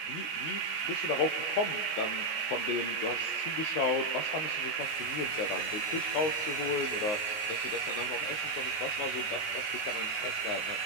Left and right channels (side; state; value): right; late; 19 ms